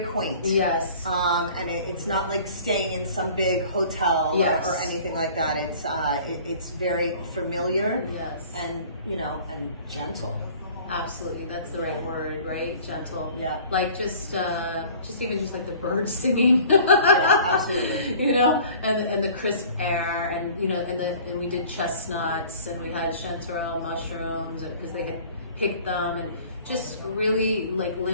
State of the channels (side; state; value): both; inverted; correlation -0.48